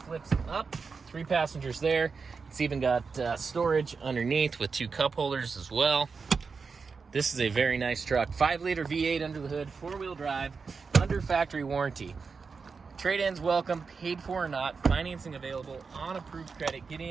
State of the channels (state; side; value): quieter; left; 5.0 dB